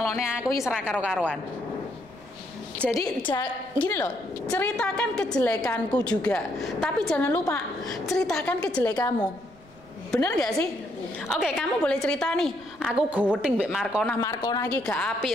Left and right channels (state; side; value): noise; right; rumble, 26 dB below the sound